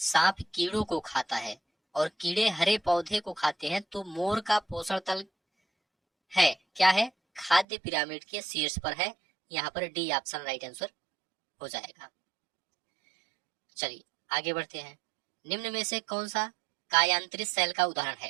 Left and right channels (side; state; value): left; drops out; at 7.7 s